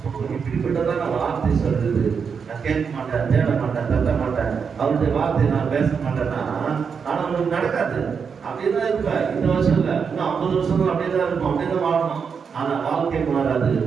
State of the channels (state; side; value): quieter; left; 6.2 dB